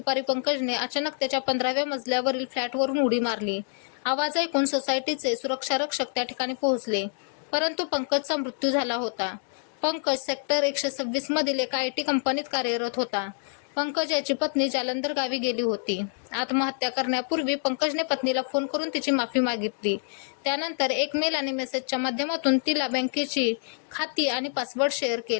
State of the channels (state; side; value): silent; right; 58 dB below the other